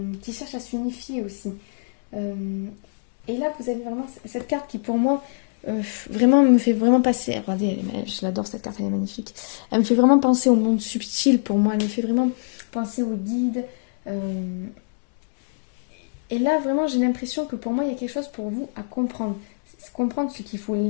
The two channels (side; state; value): right; silent; digital silence